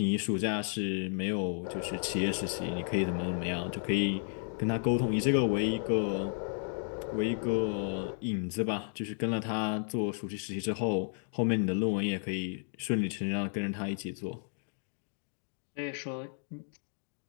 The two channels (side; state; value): right; silent; 56 dB below the other